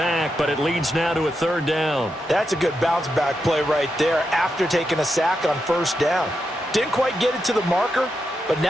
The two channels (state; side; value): normal; both; correlation 0.86